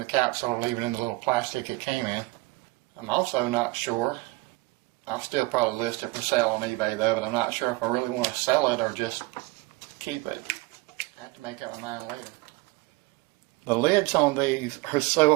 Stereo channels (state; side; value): quieter; left; 22.8 dB